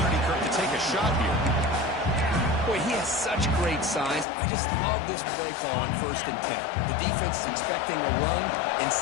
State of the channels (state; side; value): drops out; right; at 4.2 s